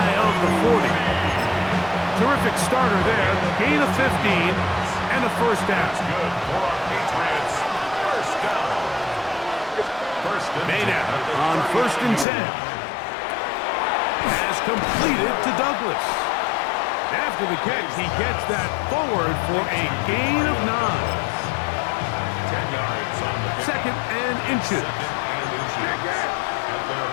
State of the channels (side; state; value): right; drops out; at 12.2 s